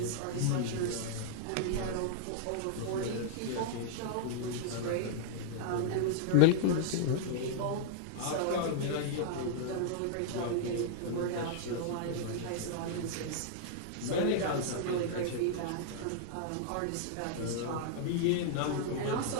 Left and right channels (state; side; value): different; both; correlation -0.01